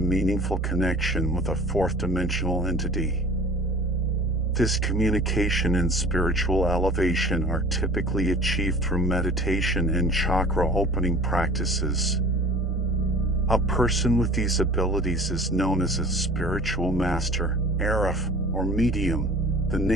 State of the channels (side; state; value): both; normal; correlation 0.45